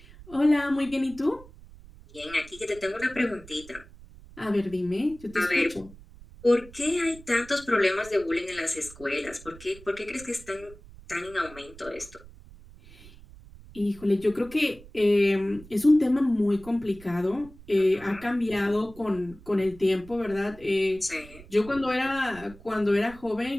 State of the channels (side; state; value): right; noise; rumble, 20 dB below the sound